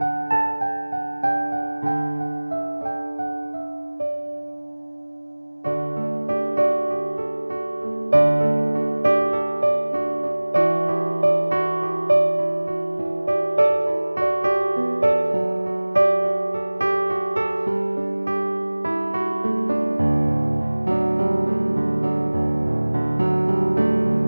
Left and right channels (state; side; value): inverted; both; correlation -1.00